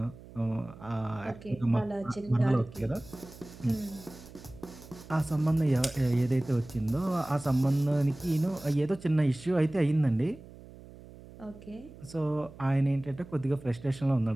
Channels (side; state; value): right; noise; hum, 18 dB below the sound